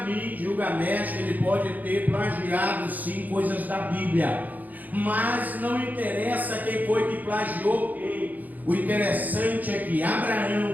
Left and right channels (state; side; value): late; left; 0.081 ms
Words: mim Gilgamesh ele pode ter plagiado sim coisas da Bíblia, mas não interessa quem foi que plagiou quem. O interessante é que